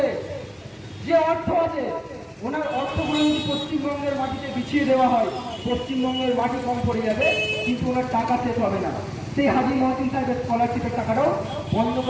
যে অর্থ আছে, ওনার অর্থগুলো যদি পশ্চিমবঙ্গের মাটিতে বিছিয়ে দেওয়া হয়, পশ্চিমবঙ্গের মাটি কম পড়ে যাবে, কিন্তু ওনার টাকা শেষ হবে না। সেই হাজি মহসিন সাহেবের স্কলারশিপের টাকাটাও বন্ধ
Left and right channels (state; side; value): identical; both; correlation 1.00